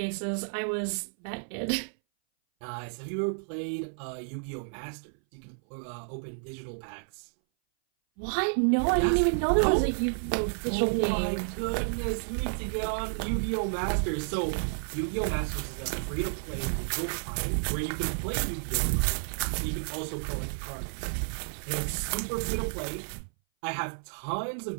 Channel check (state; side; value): silent; left; 57 dB below the other